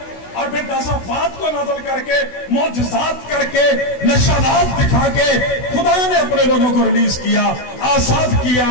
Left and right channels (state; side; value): late; right; 16 ms